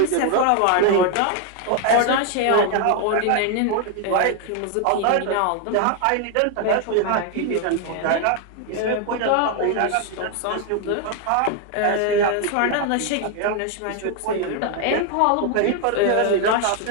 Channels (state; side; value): different; both; correlation 0.01